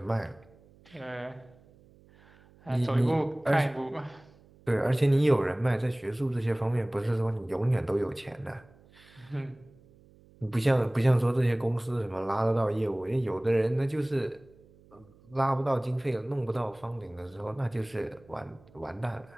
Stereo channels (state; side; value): noise; right; hum, 27 dB below the sound